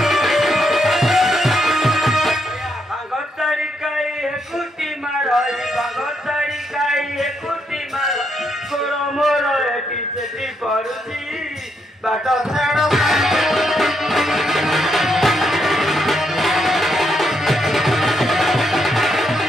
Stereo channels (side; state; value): both; normal; correlation 0.78